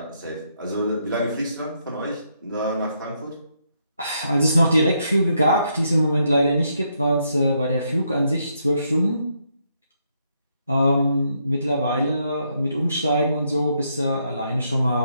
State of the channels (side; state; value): both; inverted; correlation -0.76